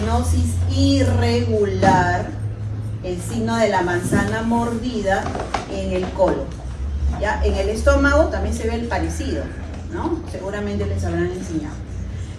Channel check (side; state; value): both; identical; correlation 1.00